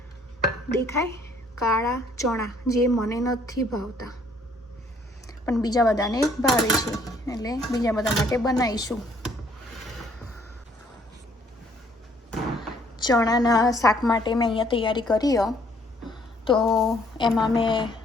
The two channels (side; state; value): both; normal; correlation 0.63